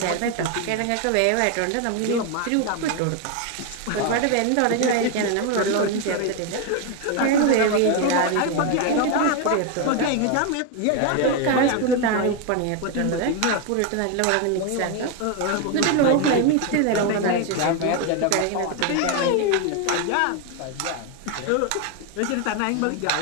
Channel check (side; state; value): both; different; correlation 0.01